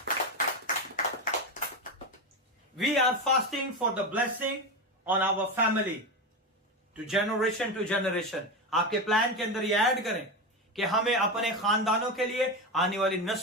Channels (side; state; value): both; normal; correlation 0.17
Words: We are fasting for the blessing on our family to generation. आपके plan के अंदर ये add करें कि हमें अपने खानदानों के लिए, आने वाली